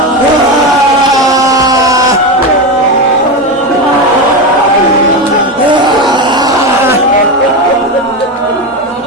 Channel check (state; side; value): normal; both; correlation 0.16